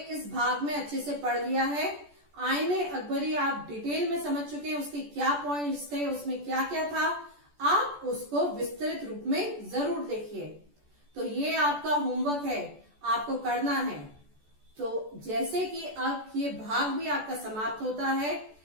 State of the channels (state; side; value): late; left; 14 ms